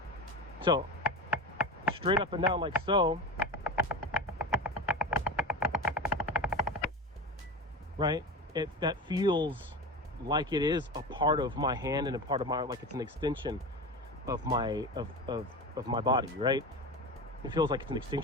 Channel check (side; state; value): both; normal; correlation 0.25